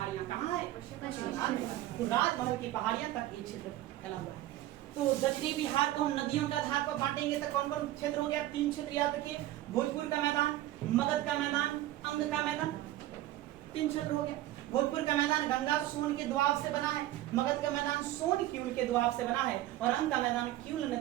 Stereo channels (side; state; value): left; quieter; 14.9 dB